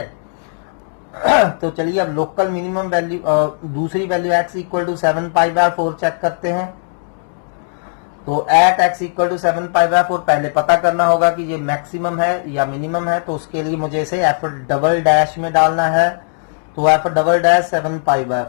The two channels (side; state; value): right; silent; 68 dB below the other